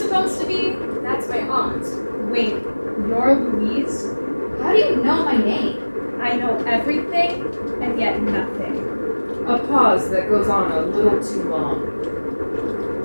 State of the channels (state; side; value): inverted; both; correlation -1.00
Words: to be? That's my aunt. Wait, you're Louise? How do you know my name? I know everything and yet nothing. A pause that goes on a little too long.